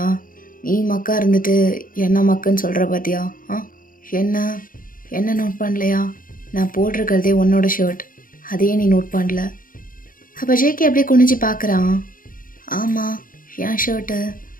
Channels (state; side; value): late; right; 0.40 ms